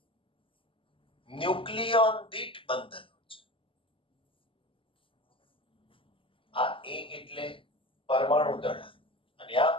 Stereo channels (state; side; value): late; right; 0.25 ms